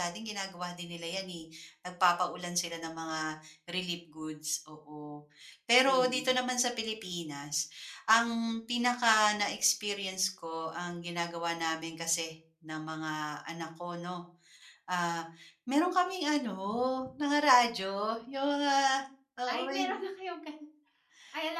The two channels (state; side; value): identical; both; correlation 1.00